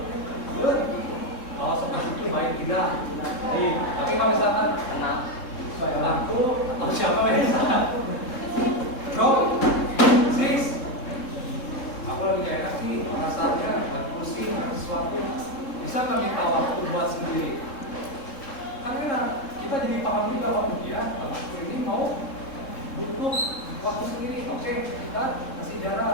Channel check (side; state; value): right; late; 3.7 ms